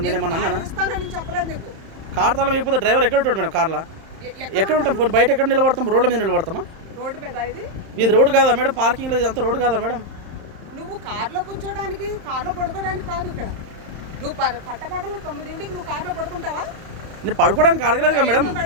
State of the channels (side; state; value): left; late; 31 ms